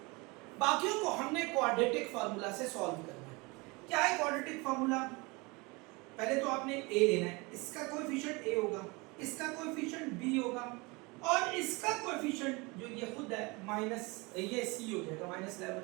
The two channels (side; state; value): left; quieter; 26.2 dB